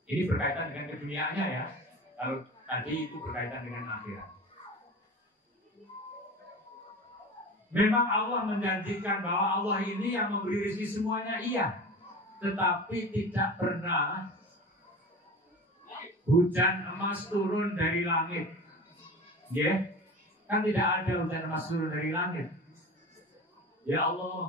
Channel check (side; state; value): both; normal; correlation 0.33